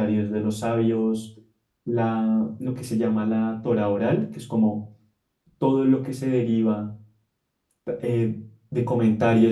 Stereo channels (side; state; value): both; identical; correlation 1.00